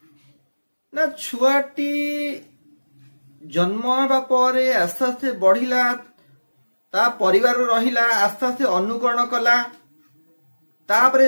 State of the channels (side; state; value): both; inverted; correlation -1.00